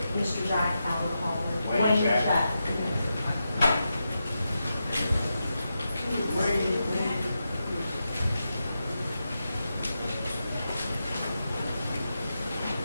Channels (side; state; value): both; inverted; correlation -0.88